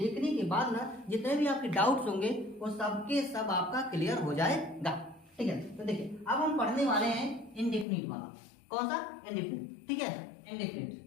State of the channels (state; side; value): drops out; right; at 7.9 s